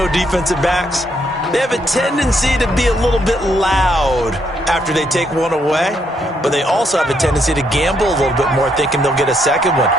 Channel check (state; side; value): normal; both; correlation 0.74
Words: defensive backs, they have a tendency to be a little bit loud after they take one away, but they also have a tendency to gamble a little bit more, thinking they'll get a second one.